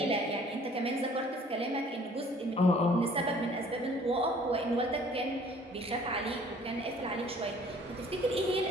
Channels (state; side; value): normal; both; correlation 0.54